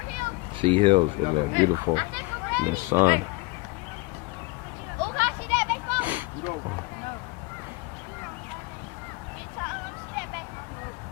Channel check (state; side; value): quieter; right; 24.7 dB